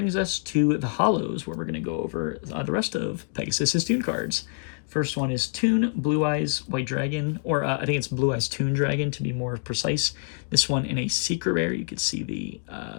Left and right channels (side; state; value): right; silent; digital silence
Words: us to the Hollows, where we're going to go over the rest of Pegasus's Toon cards. First one is Toon Blue Eyes White Dragon, or I think it's Blue Eyes Toon Dragon to be more precise. This one in a secret rare. You can see the